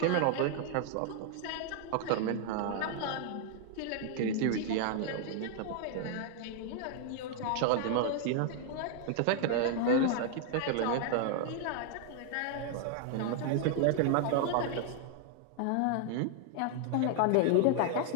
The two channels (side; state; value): both; different; correlation 0.00